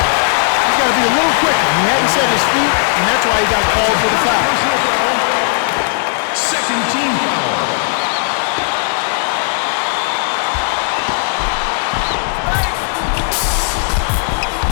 He's got to be a little quicker. He hadn't set his feet, and that's why he got called for the foul. Personal foul. Second team foul.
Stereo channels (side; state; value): right; silent; digital silence